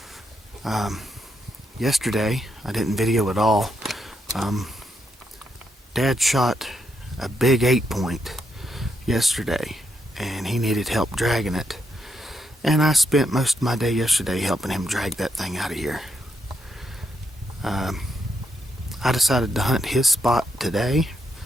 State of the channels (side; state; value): both; normal; correlation 0.79